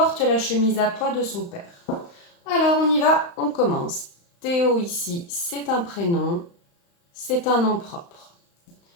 la chemise à pois de son père. Alors on y va, on commence. Théo ici, c'est un prénom, c'est un nom propre.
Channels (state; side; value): late; right; 35 ms